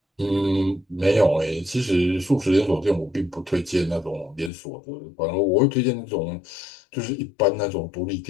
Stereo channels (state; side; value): drops out; right; at 4.5 s